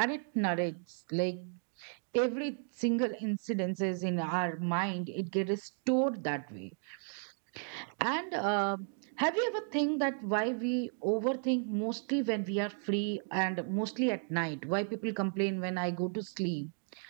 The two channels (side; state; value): left; silent; 55 dB below the other